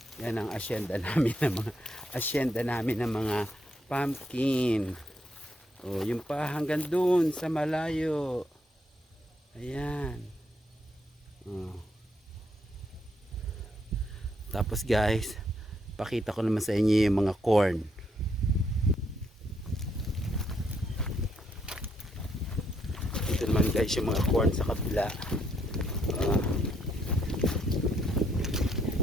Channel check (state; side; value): normal; both; correlation 0.74